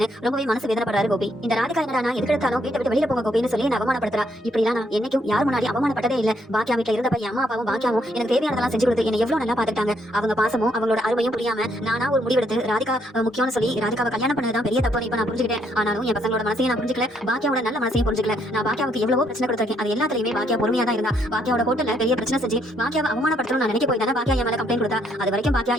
ரொம்பவே மனசு வேதனைப்படுறாரு கோபி. இந்த ராதிகா என்னடா நான் எதுக்கெடுத்தாலும் வீட்டை விட்டு வெளியில போங்க கோபின்னு சொல்லி அவமானப்படுத்துறா. இப்படிலாம் நான் என்னைக்கும் யார் முன்னாடி அவமானப்பட்டதே இல்ல. பாக்கியா வீட்டுல இருந்தப்ப என் அம்மா அப்பாவும் பாக்கியாவும் எனக்கு தேவையானதெல்லாம் செஞ்சு கொடுத்து என்ன எவ்வளவு நல்லா பாத்துட்டாங்க. அவங்க பாசமும் அவங்களோட அருமையும் புரியாம நானா ஒரு முடிவெடுத்து ராதிகா முக்கியம்னு சொல்லி ராதிகாவை கல்யாணம் பண்ணதுதான் பெரிய தப்பு இப்ப நான் புரிஞ்சுக்கிட்டேன். ஆனாலும் என் பசங்களோட மனசையும் நான் புரிஞ்சுக்கல, பாக்கியாவோட நல்ல மனசையும் புரிஞ்சுக்கல. நான் பாக்கியாவுக்கு எவ்வளவோ பிரச்சனை கொடுத்திருக்கேன். அது எல்லாத்துலயுமே பாக்கியா பொறுமையா தான் இருந்தா. பாக்கியாவோட கோட்டல பெரிய பிரச்சனை செஞ்சு பாக்கியாவை அவமானப்படுத்தணும் நான் நினைக்க போய் தானே பாக்கியா என் மேல கம்ப்ளைண்ட் கொடுத்தா. அது வரைக்கும் பாக்கியா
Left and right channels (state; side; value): normal; both; correlation 0.71